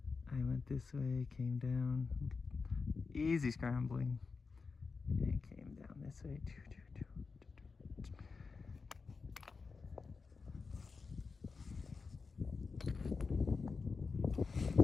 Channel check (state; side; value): quieter; right; 4.6 dB